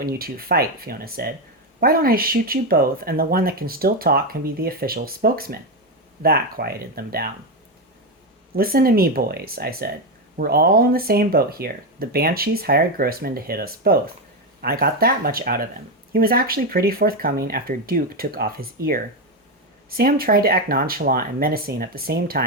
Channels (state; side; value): normal; both; correlation 0.10